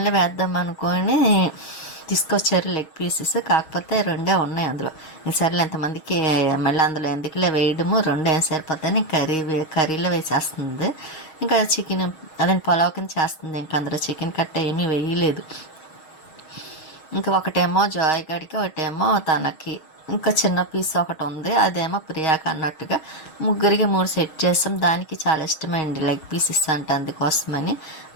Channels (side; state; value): right; late; 6.3 ms